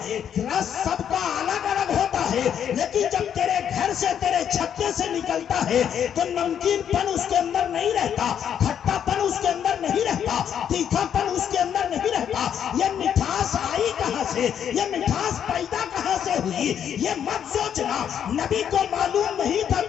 رس سب کا الگ الگ ہوتا ہے. لیکن جب تیرے گھر سے تیرے چھتے سے نکلتا ہے تو نمکین پن اس کے اندر نہیں رہتا، کھٹا پن اس کے اندر نہیں رہتا، تیکھا پن اس کے اندر نہیں رہتا. یہ مٹھاس آئی کہاں سے، یہ مٹھاس پیدا کہاں سے ہوئی، یہ مت سوچنا. نبی کو معلوم نہیں تھا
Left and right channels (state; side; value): quieter; right; 8.9 dB